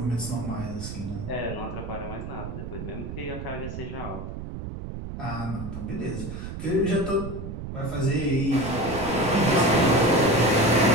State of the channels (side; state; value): right; noise; rumble, 8 dB below the sound